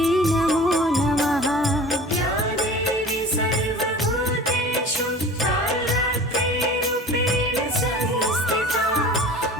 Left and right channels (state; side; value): normal; both; correlation 0.41